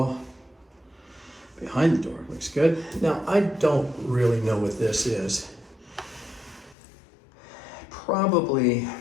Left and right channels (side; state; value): right; drops out; at 6.8 s